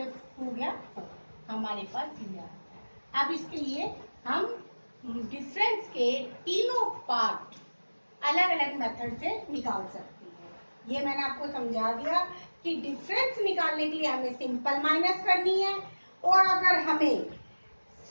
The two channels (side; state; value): both; inverted; correlation -1.00